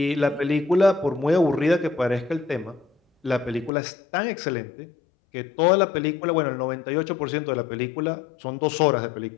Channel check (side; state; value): right; drops out; at 3.7 s